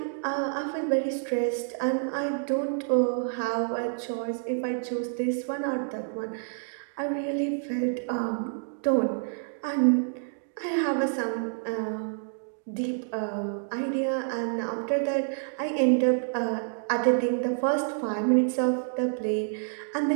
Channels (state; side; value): silent; left; digital silence